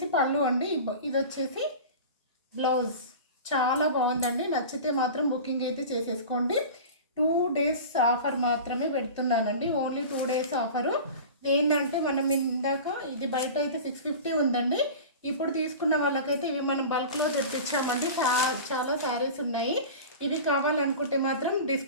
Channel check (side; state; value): both; inverted; correlation -0.34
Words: పళ్ళు అండి, ఇది వచ్చేసి బ్లౌజ్. చాలా బాగుందండి. నచ్చితే మాత్రం బుకింగ్ అయితే చేసేసుకోండి. 2 days ఆఫర్ మాత్రమే పెడుతున్నానండి, ఓన్లీ 2 days ఆఫరు. ఏంటంటే మనం ఇందాక ఇది బయట అయితే 650 ఉందండి. ఇప్పుడు తీసుకున్న వాళ్ళకైతే ఇవి మనం బల్క్లో తెప్పించామండి. చాలా శారీస్ ఉన్నాయి. ఇవి కావాలనుకుంటే మాత్రం